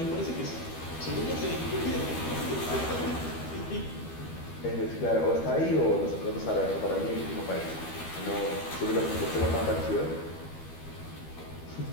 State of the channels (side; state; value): right; late; 12 ms